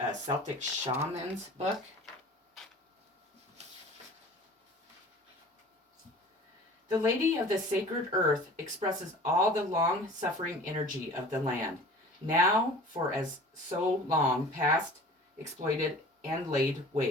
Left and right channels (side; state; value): both; normal; correlation 0.44